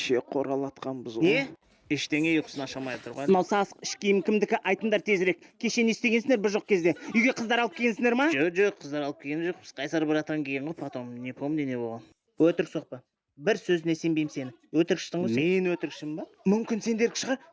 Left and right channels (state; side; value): identical; both; correlation 1.00